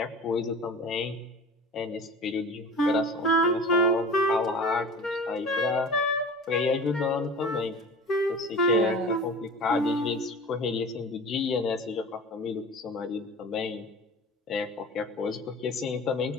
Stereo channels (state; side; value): normal; both; correlation 0.38